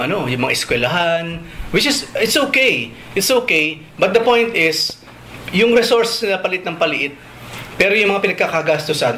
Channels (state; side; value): identical; both; correlation 1.00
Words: mga eskwelahan, which is it's okay. It's okay, but the point is yung resource na palit ng paliit, pero yung mga